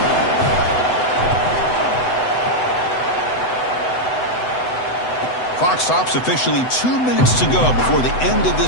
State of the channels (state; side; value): late; right; 8.0 ms